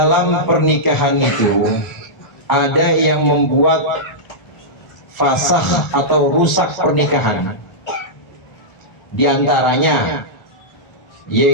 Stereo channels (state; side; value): late; right; 1.4 ms